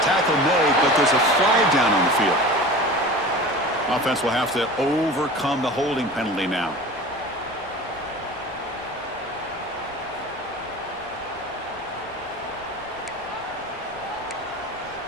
Tackle made, but there's a flag down on the field. Offense will have to overcome the holding penalty now.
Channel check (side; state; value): left; noise; rumble, 26 dB below the sound